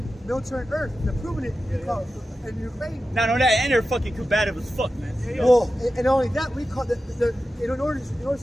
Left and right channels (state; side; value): normal; both; correlation 0.92